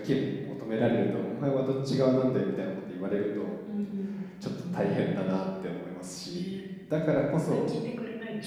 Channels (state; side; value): identical; both; correlation 1.00